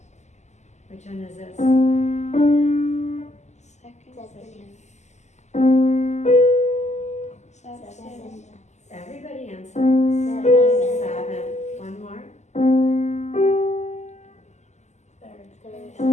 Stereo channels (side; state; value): right; late; 0.33 ms